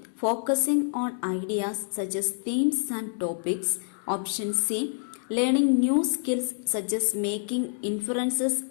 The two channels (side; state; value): right; silent; digital silence